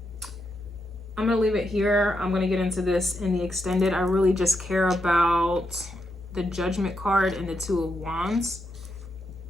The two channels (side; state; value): both; normal; correlation 0.82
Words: going to leave it here. I'm going to get into this in the extended. I really just care about the Judgment card and the Two of Wands.